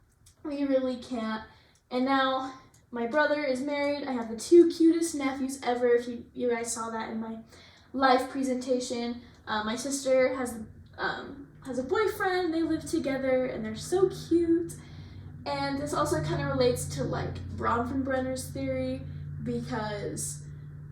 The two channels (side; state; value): both; identical; correlation 1.00